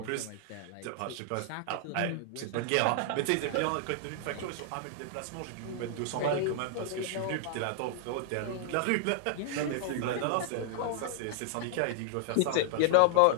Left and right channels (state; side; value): different; both; correlation -0.01